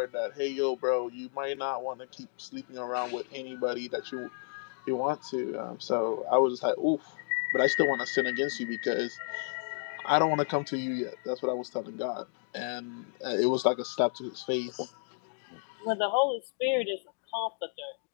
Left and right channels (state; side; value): silent; right; 57 dB below the other